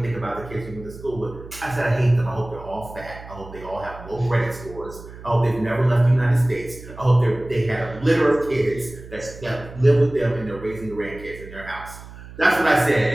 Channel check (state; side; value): noise; right; hum, 16 dB below the sound